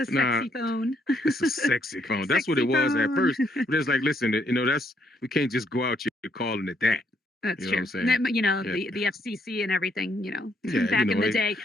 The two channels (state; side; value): normal; both; correlation 0.72